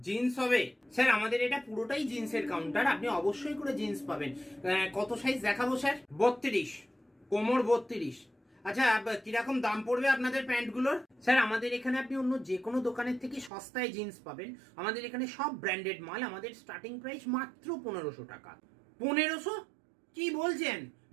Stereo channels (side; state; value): left; drops out; at 13.5 s